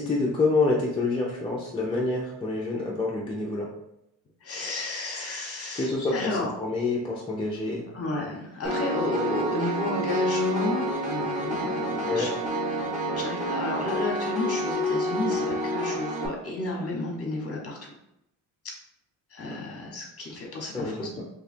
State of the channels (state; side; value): normal; both; correlation 0.42